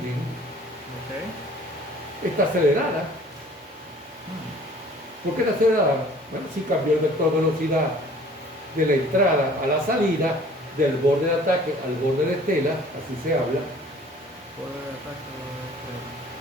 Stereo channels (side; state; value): both; normal; correlation 0.51